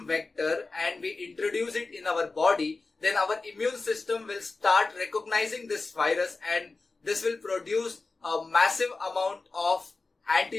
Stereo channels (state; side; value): quieter; right; 3.7 dB